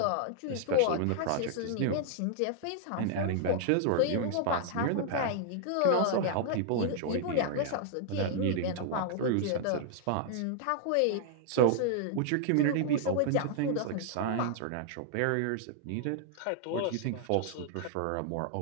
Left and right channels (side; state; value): both; different; correlation 0.00